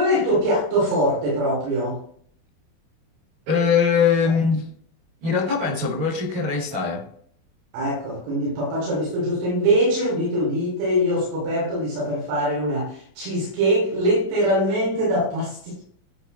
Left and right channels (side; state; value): left; late; 26 ms